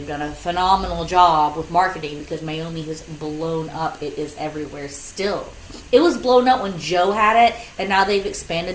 done a phenomenal job with marketing because Meiomi has blown up. It is everywhere still. It was blown up when Joe had it, and now they've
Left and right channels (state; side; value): identical; both; correlation 1.00